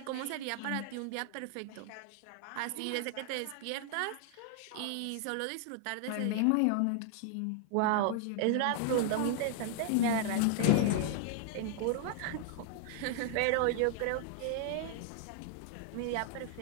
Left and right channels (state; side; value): different; both; correlation 0.00